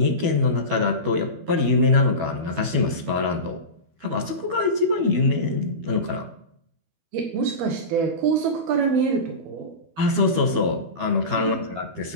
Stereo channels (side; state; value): left; late; 12 ms